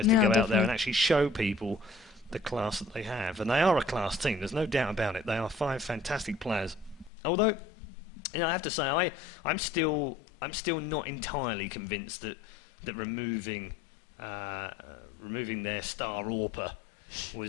to go out there and actually show people the class that they have. And they are a class team. There's no doubt about it. They are 5 fantastic players. Although, I have to say, I'm still not entirely convinced that removing removing their star AWPer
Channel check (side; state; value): right; drops out; at 7.1 s